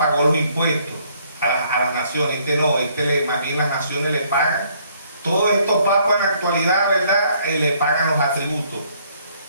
los impuestos a las naciones. Más bien las naciones le pagan. Todos estos papas en la actualidad, ¿verdad? Le pagan los atributos.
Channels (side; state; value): both; inverted; correlation -0.65